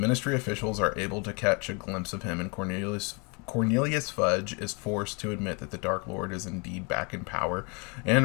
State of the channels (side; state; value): right; quieter; 32.3 dB